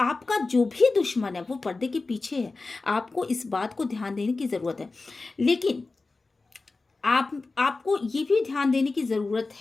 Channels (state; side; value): quieter; right; 3.6 dB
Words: जो भी दुश्मन है वो पर्दे के पीछे है, आपको इस बात को ध्यान देने की ज़रूरत है। लेकिन आपको ये भी ध्यान देने की ज़रूरत